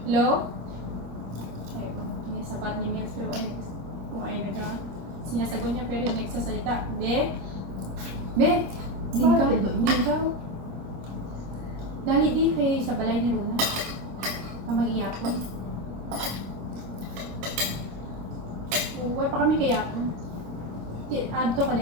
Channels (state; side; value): late; left; 25 ms